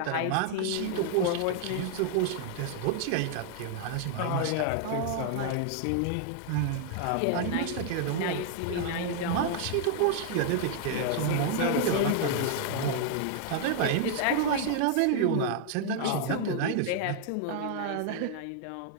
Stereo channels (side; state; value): both; different; correlation 0.00